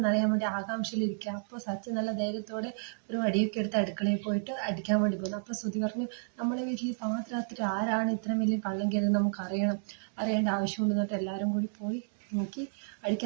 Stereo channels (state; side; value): silent; left; digital silence